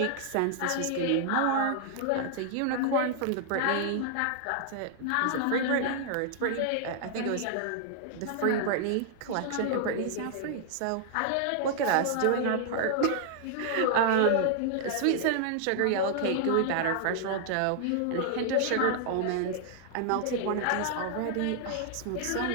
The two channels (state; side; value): different; both; correlation -0.01